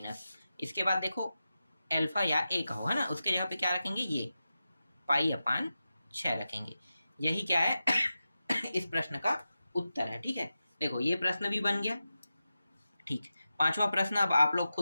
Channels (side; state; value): both; inverted; correlation -0.92